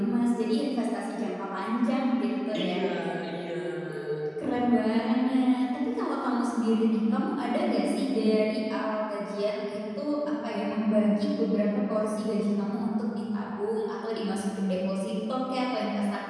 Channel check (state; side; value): identical; both; correlation 1.00